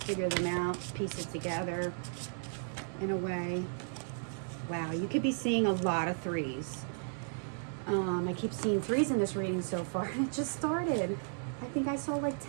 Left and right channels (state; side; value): silent; left; 55 dB below the other